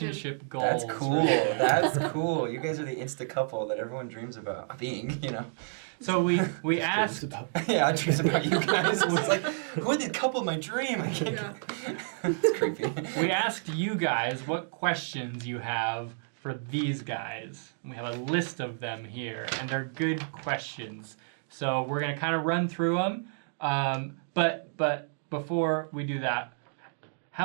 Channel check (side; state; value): left; silent; digital silence